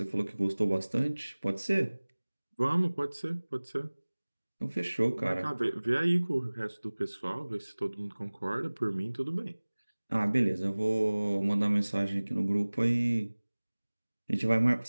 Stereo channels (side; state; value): both; inverted; correlation -1.00